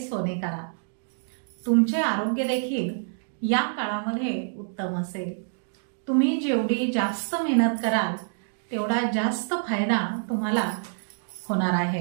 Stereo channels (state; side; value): silent; left; digital silence